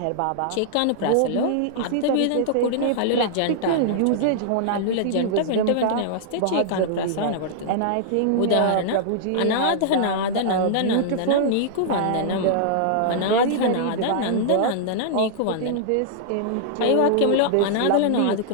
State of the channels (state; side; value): different; both; correlation -0.01